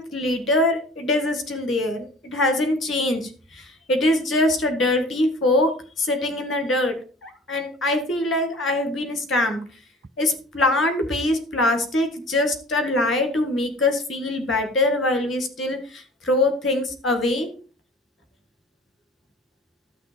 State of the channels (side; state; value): both; normal; correlation 0.45